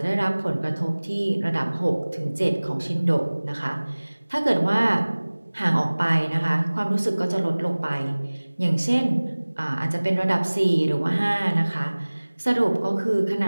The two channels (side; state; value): both; inverted; correlation -1.00